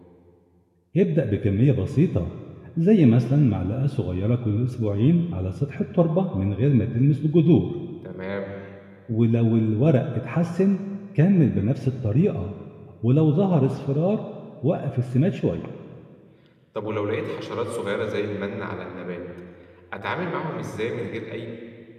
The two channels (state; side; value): identical; both; correlation 1.00